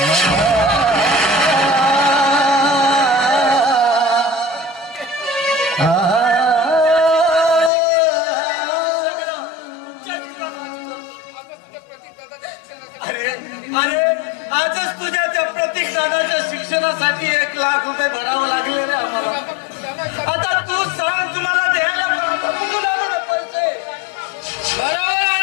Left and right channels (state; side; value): drops out; right; at 7.7 s